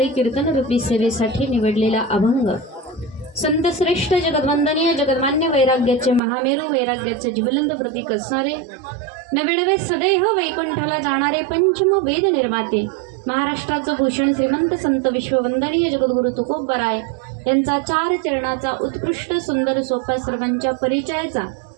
कीर्तन रूपी सेवेसाठी निवडलेला अभंग संत श्रेष्ठ जगद्वंदनीय जगन्मान्य वैराग्याचे महामेरू वैराग्याचे ज्वलंत प्रतीक असणारे नव्याण्णवे सदैव वैकुंठाला जाणारे पंचम वेद निर्माते महाराष्ट्राचं भूषण श्रीमंत संत विश्ववंदनीय जगद्गुरु तुकोबराय यांचा 4 चरणाचा उत्कृष्ट सुंदर सोपा सर्वांच्या परिचयाचा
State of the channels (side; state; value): left; drops out; at 6.2 s